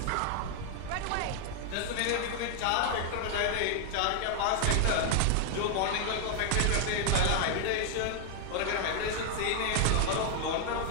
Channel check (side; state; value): both; different; correlation 0.00